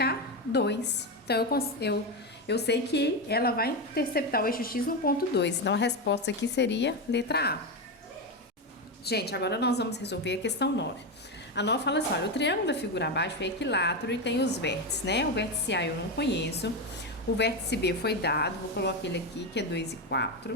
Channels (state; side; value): normal; both; correlation 0.13